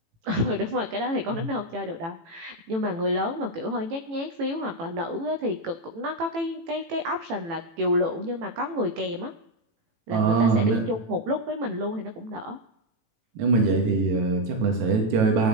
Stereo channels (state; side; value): late; left; 18 ms